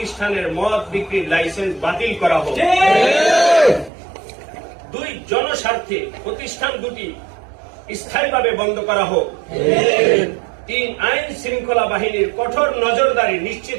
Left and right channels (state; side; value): drops out; left; at 3.9 s